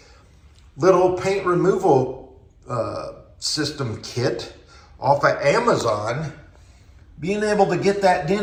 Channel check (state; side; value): identical; both; correlation 1.00